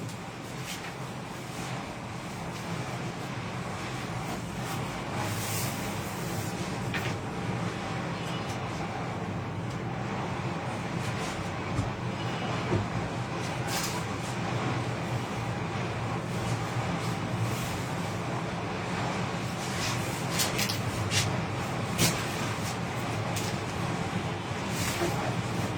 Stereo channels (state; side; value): identical; both; correlation 1.00